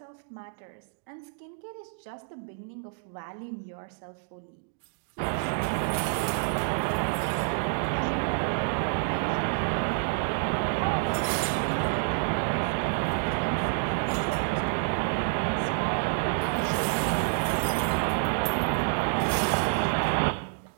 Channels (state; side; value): silent; left; digital silence